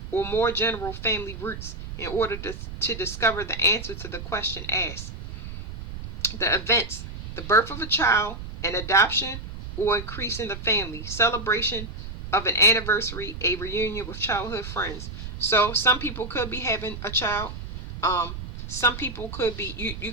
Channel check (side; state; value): right; noise; rumble, 9 dB below the sound